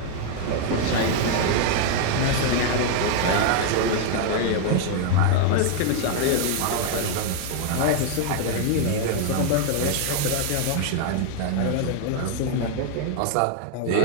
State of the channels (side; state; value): both; different; correlation 0.00